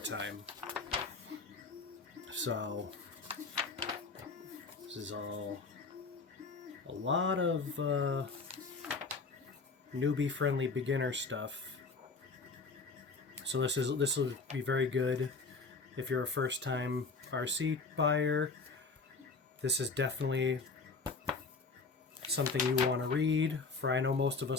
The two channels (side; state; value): right; quieter; 4.2 dB